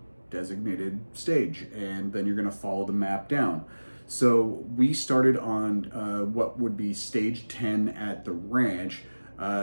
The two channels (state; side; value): inverted; both; correlation -1.00